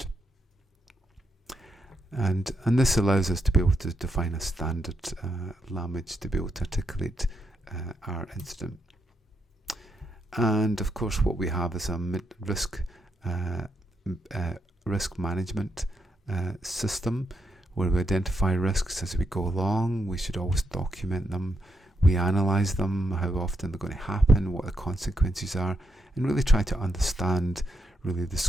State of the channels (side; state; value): both; normal; correlation 0.81